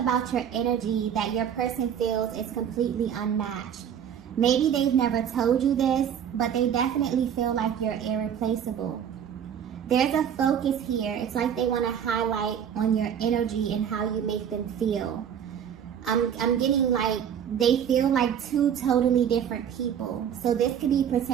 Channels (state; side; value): quieter; left; 8.7 dB